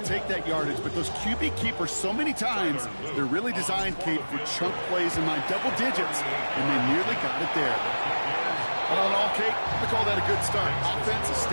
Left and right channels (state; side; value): inverted; both; correlation -1.00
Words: take that yardage, but those QB keepers, so many times, they're really designed, Kate, for chunk plays in my double digits, and they nearly got it there. All in all, Kate, I call that a good start. Offense